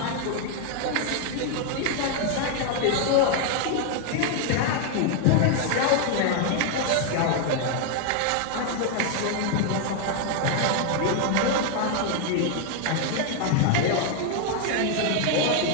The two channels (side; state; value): both; different; correlation 0.00